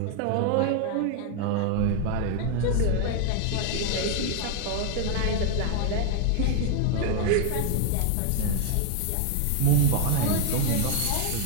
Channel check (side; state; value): both; different; correlation 0.00